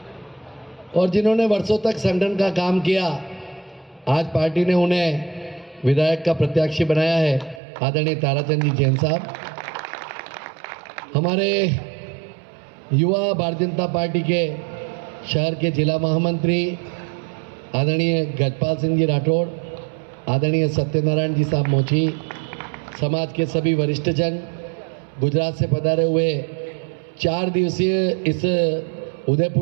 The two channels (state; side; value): drops out; left; at 7.6 s